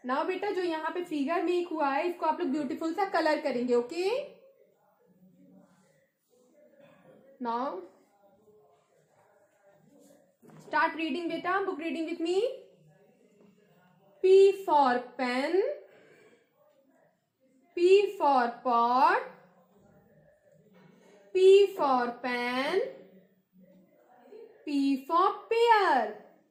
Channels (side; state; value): both; identical; correlation 1.00